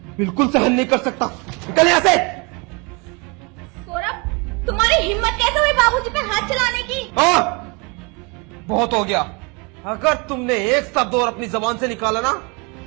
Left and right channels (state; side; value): quieter; left; 30.1 dB